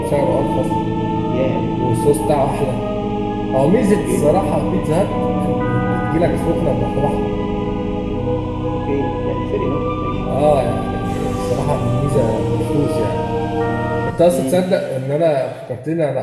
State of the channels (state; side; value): identical; both; correlation 1.00